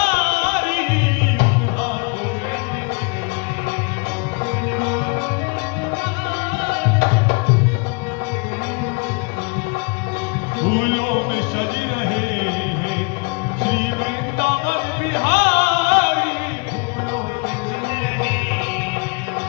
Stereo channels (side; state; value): right; quieter; 32.6 dB